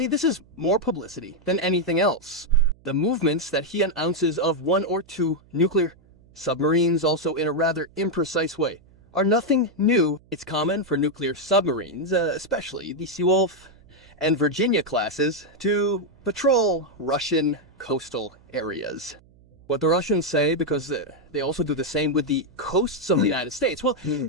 this is more publicity than anything else. The movements that he announces of 1 or 2 nuclear submarines, also in a rather imprecise way, are nothing new. It's common for nuclear submarines, especially the Seawolf and Virginia classes, to patrol Russian coastal areas. What the Russians say, because they also do the same with the coasts of the United States, well,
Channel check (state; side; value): noise; right; hum, 28 dB below the sound